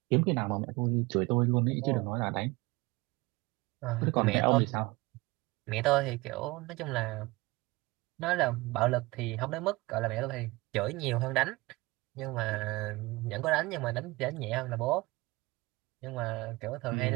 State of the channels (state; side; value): quieter; left; 22.5 dB